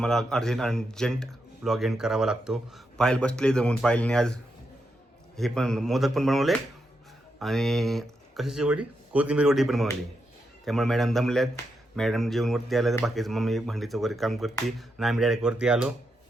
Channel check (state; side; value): normal; both; correlation 0.84